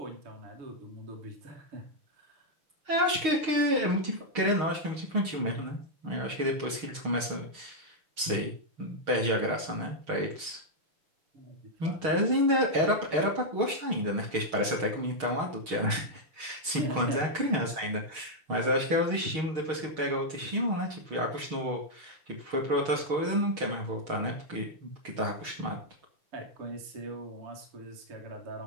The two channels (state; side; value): late; left; 6.4 ms